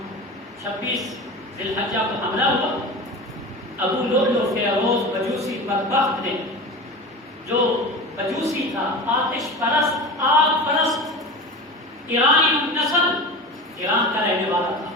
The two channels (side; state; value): both; normal; correlation 0.30